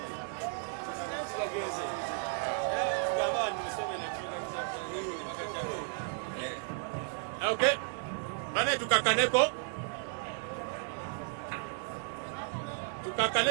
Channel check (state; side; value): silent; left; 55 dB below the other